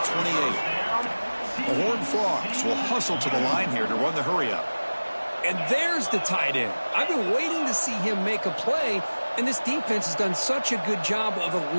28. The Horned Frogs will hustle to the line here to run the hurry up. And there's the tight end. I've been waiting to see him make a play, and this defense has done such a good job of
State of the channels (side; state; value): both; inverted; correlation -1.00